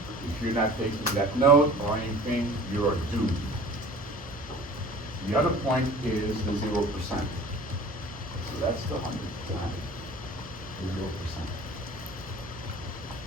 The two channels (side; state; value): both; normal; correlation 0.44